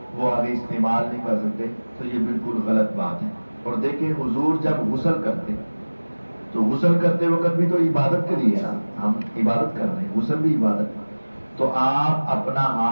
وہ آگے استعمال نہیں کر سکتے تو یہ بالکل غلط بات ہے. اور دیکھیں حضور جب غسل کرتے تو غسل کرتے وقت بھی تو عبادت کے لیے نا، ہم عبادت کر رہے ہیں، غسل بھی عبادت. تو آپ اپنا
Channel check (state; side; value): inverted; both; correlation -1.00